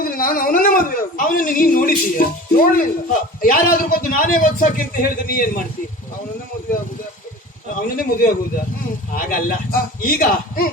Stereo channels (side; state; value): both; normal; correlation 0.38